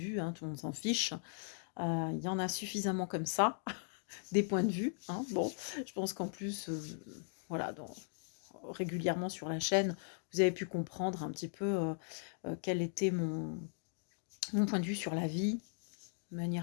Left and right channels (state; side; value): silent; right; digital silence